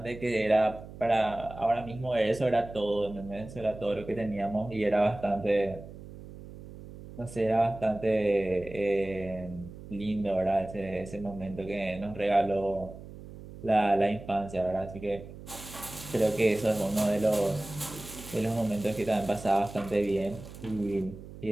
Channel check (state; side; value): noise; right; hum, 15 dB below the sound